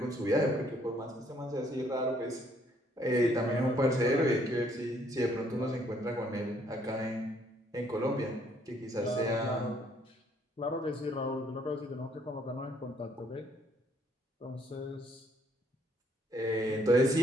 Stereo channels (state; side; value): normal; both; correlation 0.66